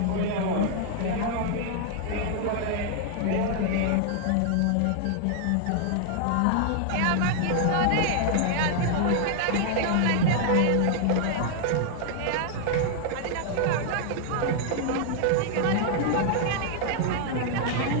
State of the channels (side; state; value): both; different; correlation 0.00